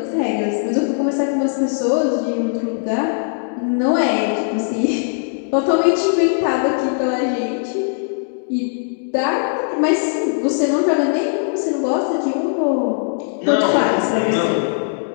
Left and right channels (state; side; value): silent; right; digital silence